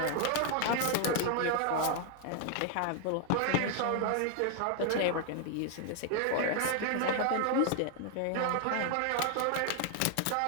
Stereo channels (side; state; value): both; different; correlation 0.00